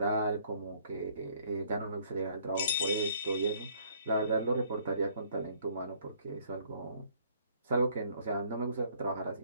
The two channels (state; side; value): inverted; both; correlation -0.62